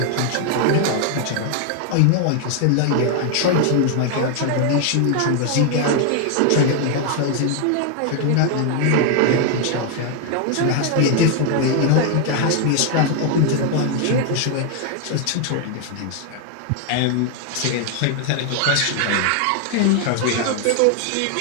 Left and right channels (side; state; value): both; different; correlation 0.01